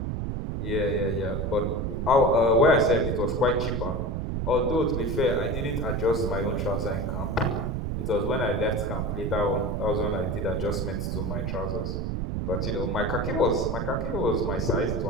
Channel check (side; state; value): right; noise; rumble, 2 dB below the sound